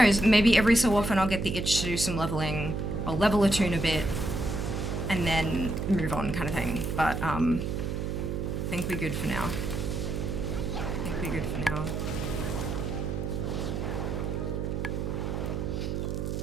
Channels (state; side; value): noise; right; hum, 2 dB below the sound